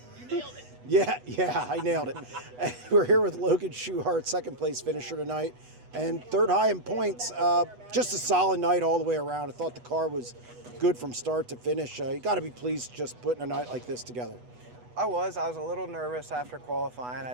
Yeah, I nailed it. And we're here with Logan Schuchart, second place finisher tonight, and third high in points. Just a solid night all the way around. I thought the car was good from start to finish. You got to be pleased just putting a night like this together. I was a little nervous after qualifying. I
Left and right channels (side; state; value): left; late; 8.1 ms